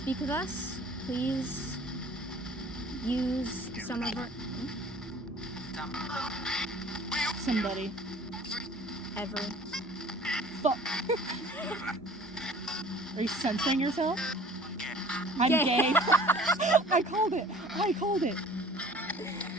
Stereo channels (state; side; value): normal; both; correlation 0.48